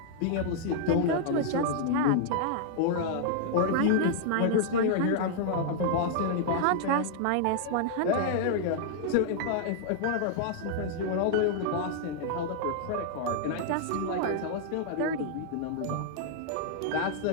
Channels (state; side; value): different; both; correlation -0.01